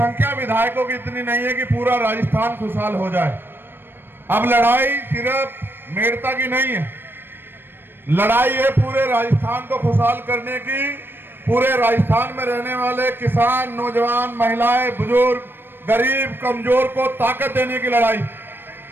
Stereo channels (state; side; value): late; left; 0.098 ms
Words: विधायकों की इतनी नहीं है कि पूरा राजस्थान खुशहाल हो जाए। अब लड़ाई सिर्फ मेड़ता की नहीं है, लड़ाई है पूरे राजस्थान को खुशहाल करने की। पूरे राजस्थान में रहने वाले किसान, नौजवान, महिलाएं, बुजुर्ग, गरीब, कमजोर को ताकत देने की लड़ाई।